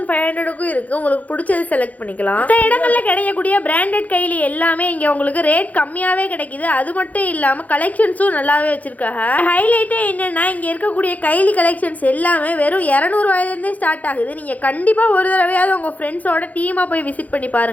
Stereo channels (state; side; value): late; right; 0.076 ms